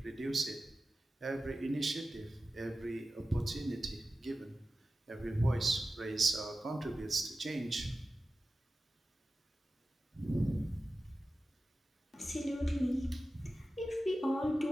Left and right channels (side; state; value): both; normal; correlation 0.94